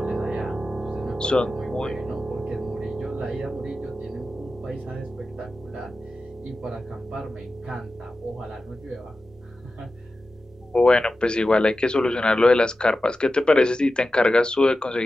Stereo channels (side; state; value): both; normal; correlation 0.93